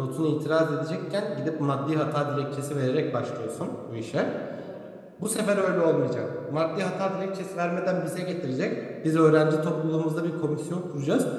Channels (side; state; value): both; identical; correlation 1.00